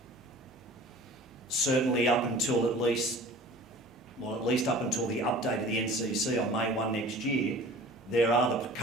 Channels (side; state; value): both; normal; correlation 0.43